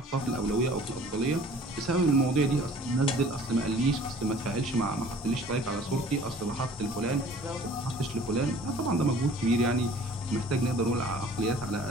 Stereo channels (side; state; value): both; normal; correlation 0.50